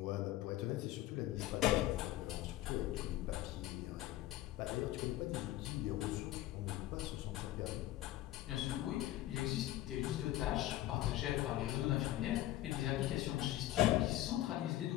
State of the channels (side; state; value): right; quieter; 14.8 dB